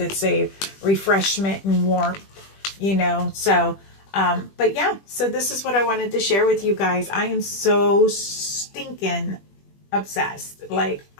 a refreshment and warmth, So, but yeah, so this is what I wanted to share with you guys. I am so stinking obsessed. Like,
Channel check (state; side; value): late; right; 20 ms